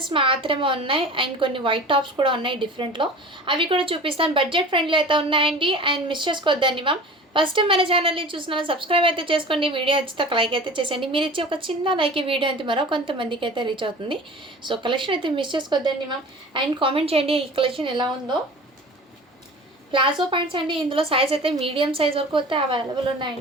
మాత్రమే ఉన్నాయి అండ్ కొన్ని వైట్ టాప్స్ కూడా ఉన్నాయి డిఫరెంట్లో. అవి కూడా చూపిస్తాను. బడ్జెట్ ఫ్రెండ్లీ అయితే ఉన్నాయండి అండ్ మిస్ చేసుకోవద్దండి మ్యామ్. ఫస్ట్ టైం మన ఛానల్ని చూస్తున్నాను, సబ్స్క్రైబ్ అయితే చేసుకోండి. వీడియో నచ్చితే ఒక లైక్ అయితే చేసేయండి. మీరు ఇచ్చే ఒక చిన్న లైక్ ఈ వీడియో అయితే మరో కొంతమందికి అయితే రీచ్ అవుతుంది. సో కలెక్షన్ అయితే మిస్ చేసుకోవద్దండి మ్యామ్. అండ్ కామెంట్ చేయండి ఈ కలెక్షన్ ఎలా ఉందో. ప్లాజో ప్యాంట్స్ అండి. ఇందులో సైజ్ అయితే మీడియం సైజ్ వరకు అయితే అవైలబుల్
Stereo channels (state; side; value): normal; both; correlation 0.39